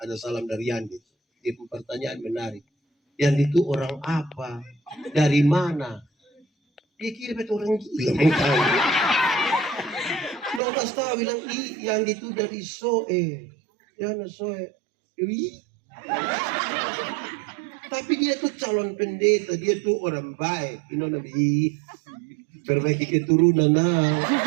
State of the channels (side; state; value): left; drops out; at 10.6 s